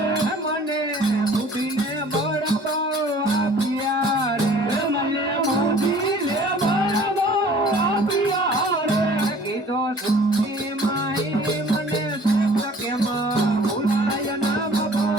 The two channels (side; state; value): both; normal; correlation 0.51